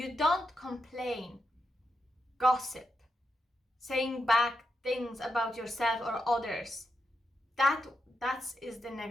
don't complain, gossip, saying back things about yourself or others. That is the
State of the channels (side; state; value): both; normal; correlation 0.84